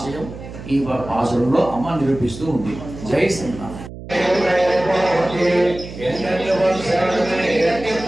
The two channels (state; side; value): noise; right; hum, 13 dB below the sound